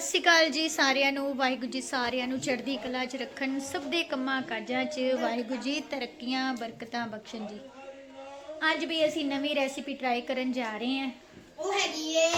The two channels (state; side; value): identical; both; correlation 1.00